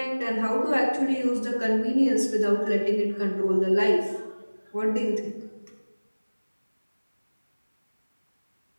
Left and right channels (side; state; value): both; inverted; correlation -1.00